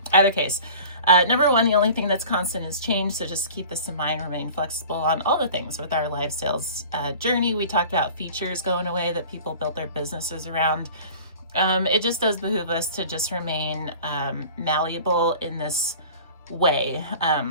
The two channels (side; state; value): both; inverted; correlation -0.42